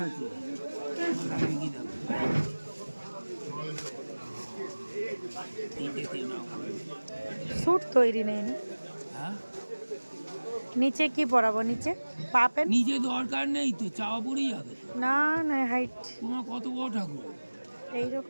আছে। স্যুট তৈরি নেই না? হ্যাঁ, নিচে কি পরাবো? নিচে পাপেন? নিজে দরকার নেই তো, চাওয়া পড়েই যাবে। না না, হাইট তোমার কত বড় ঠাকুর?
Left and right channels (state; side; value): inverted; both; correlation -1.00